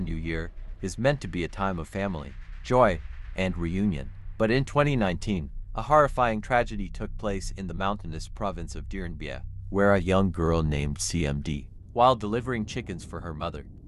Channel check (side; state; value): both; identical; correlation 1.00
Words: New Year, is meant to be a time of family, joy, and reunion. But in 2019, a horrifying tragedy took place in the mountainous province of Dien Bien, where a young girl named C.M.D., while delivering chickens for her mother,